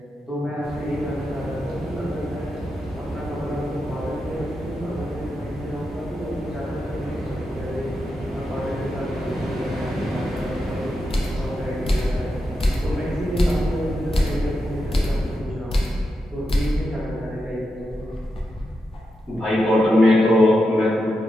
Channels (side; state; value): both; normal; correlation 0.87